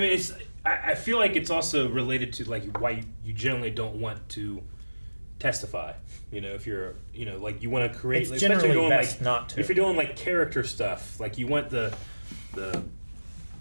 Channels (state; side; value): inverted; both; correlation -1.00